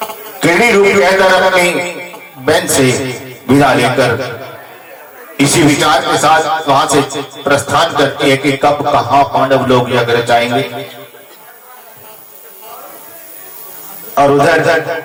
किरड़ी रूप के अंदर अपनी बहन से विदा लेकर इसी विचार के साथ वहां से प्रस्थान करती है कि कब कहां पांडव लोग यज्ञ रचाएंगे। और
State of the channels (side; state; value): both; identical; correlation 1.00